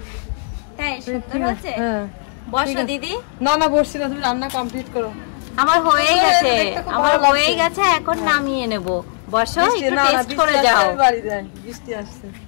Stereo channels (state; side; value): silent; right; 65 dB below the other